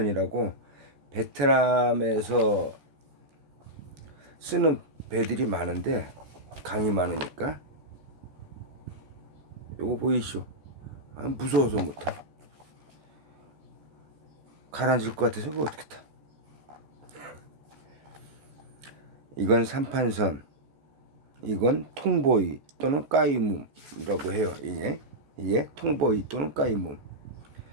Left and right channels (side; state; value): left; late; 14 ms